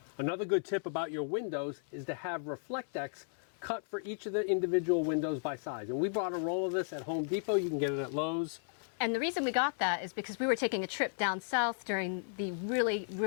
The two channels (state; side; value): silent; right; 55 dB below the other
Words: Another good tip about your windows is to have Reflectex cut for each of the individual windows by size. And we bought a roll of this at Home Depot. You can get it at Lowe's. And the reason we got that is because we were taking a trip down south during the really,